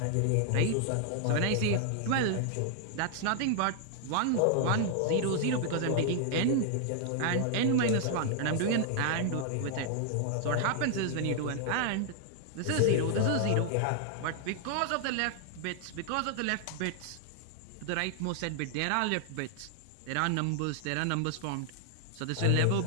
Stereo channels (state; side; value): different; both; correlation 0.00